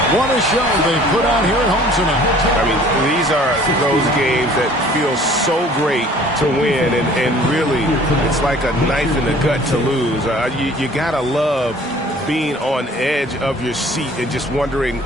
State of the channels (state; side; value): normal; both; correlation 0.52